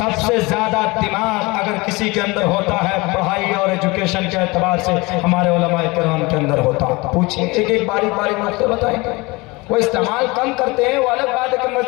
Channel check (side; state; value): right; quieter; 24.0 dB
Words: ज्यादा दिमाग अगर किसी के अंदर होता है पढ़ाई और एजुकेशन के एतबार से, हमारे उलमाए किराम के अंदर होता। पूछिए, एक बारीक बारीक नुक्ते बताएंगे। वो इस्तेमाल कम करते हैं, वो अलग बात है कि